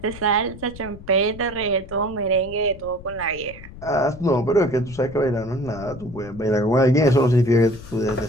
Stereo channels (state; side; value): noise; left; rumble, 16 dB below the sound